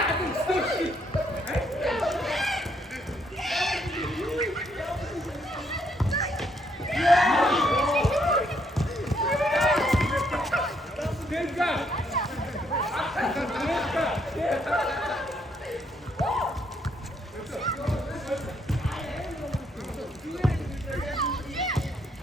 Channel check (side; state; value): both; normal; correlation 0.72